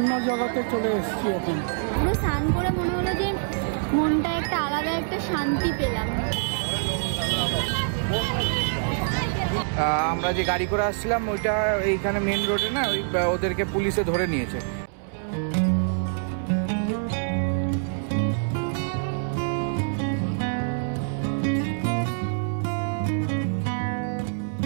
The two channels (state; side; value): silent; left; 61 dB below the other